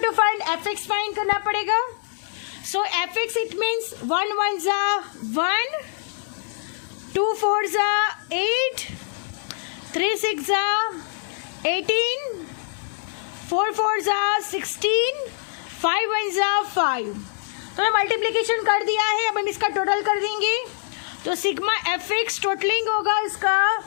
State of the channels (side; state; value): right; silent; digital silence